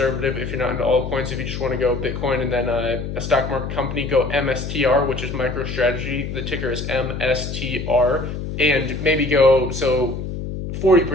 if you're not into altcoins. If you just want to go Bitcoin and then a stock market company, go MSTR, which is MicroStrategy. The ticker is MSTR, and maybe go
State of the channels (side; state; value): left; noise; hum, 6 dB below the sound